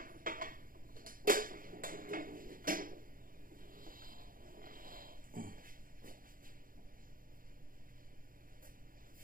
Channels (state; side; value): late; left; 0.41 ms